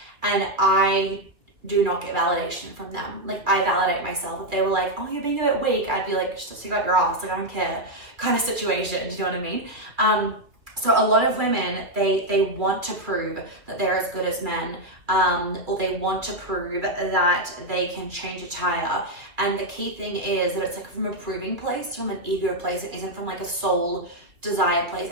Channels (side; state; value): left; late; 2.5 ms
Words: And I do not get validation from them. Like I validate myself. If they were like, oh, you're being a bit weak, I'd be like, just stick out your ass. Like I don't care kind of situation. Do you know what I mean? So a lot of women, they want to prove that they're as good as men, or they want to prove that they can change a tire. And the key thing is that it's like from a proving place, from an ego place. It isn't from like a soul desire place.